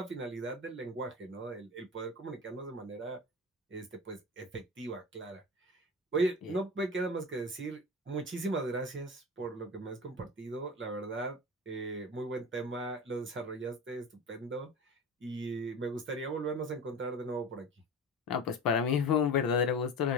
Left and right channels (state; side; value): normal; both; correlation 0.30